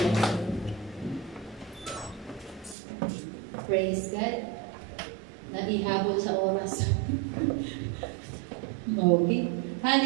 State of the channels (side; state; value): left; drops out; at 2.8 s